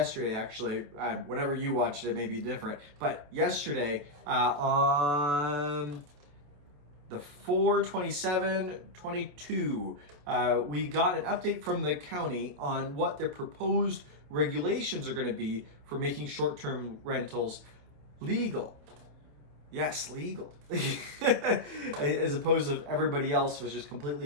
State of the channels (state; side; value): late; left; 28 ms